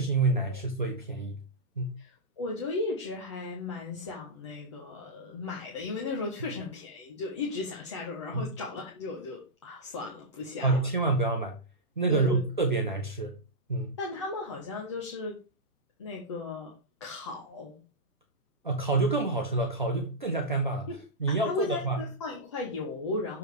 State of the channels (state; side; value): normal; both; correlation -0.09